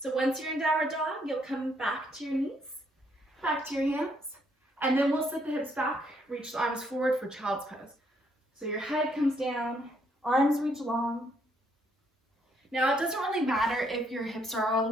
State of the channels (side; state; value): both; normal; correlation 0.71